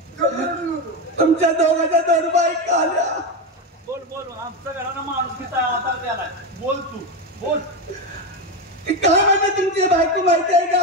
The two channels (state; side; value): normal; both; correlation 0.14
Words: तुमच्या दोघांच्या 2 बायका आल्या. बोल आमच्या घरानं माणुसकीचा आधार द्यायला. बोल तू बोल. काय म्हणते तुमची बायको माहिती आहे